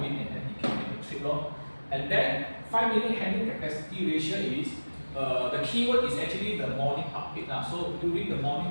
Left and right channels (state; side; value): inverted; both; correlation -1.00